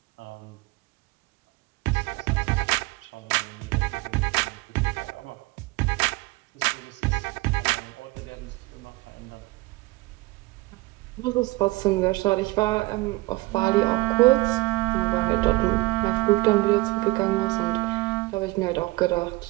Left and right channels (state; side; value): quieter; left; 22.7 dB